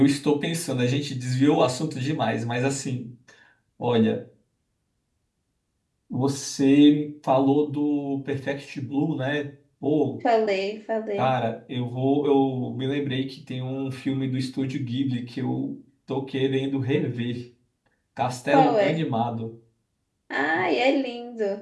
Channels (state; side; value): identical; both; correlation 1.00